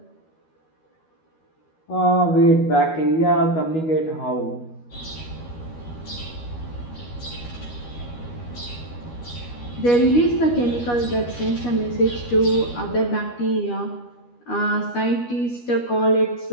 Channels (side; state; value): right; late; 12 ms